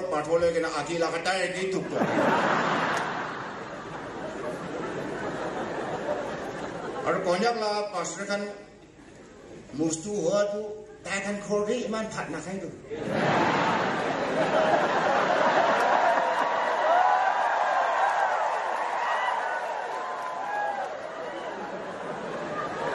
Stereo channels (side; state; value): both; identical; correlation 1.00